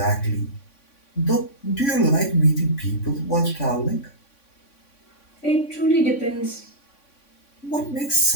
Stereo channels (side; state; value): right; late; 3.6 ms